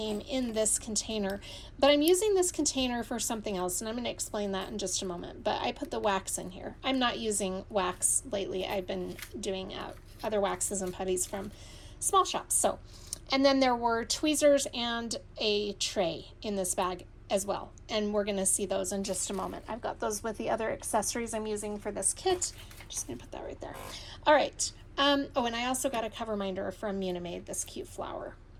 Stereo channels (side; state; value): both; identical; correlation 1.00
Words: in this container, but I'm using this container for something else, and I'm going to explain that in just a moment. But I put the wax in here. I'm not using wax lately. I've been doing other waxes and putties from small shops. So, and then there were tweezers and a tray in this bag as well, and we're going to see those in just a moment. I've got those with the other accessories I'm using for this kit. Just going to put that right there. All right. Oh, and I also got a cover minder from Munimade, this cute flower.